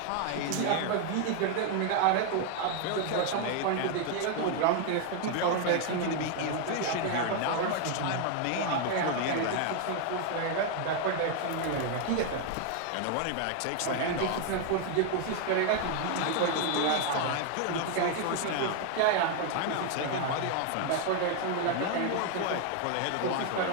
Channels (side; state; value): both; different; correlation 0.01